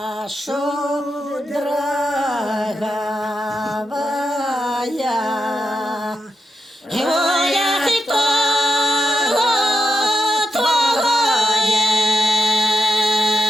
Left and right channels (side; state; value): both; normal; correlation 0.87